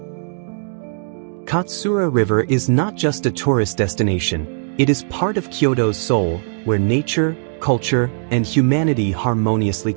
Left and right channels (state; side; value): silent; left; digital silence